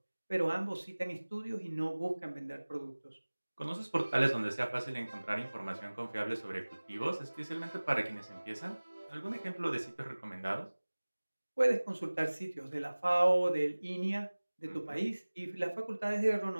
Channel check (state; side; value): inverted; both; correlation -1.00